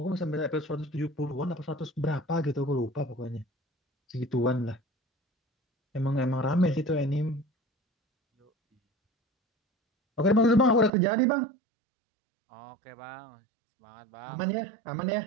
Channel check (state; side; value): drops out; left; at 10.9 s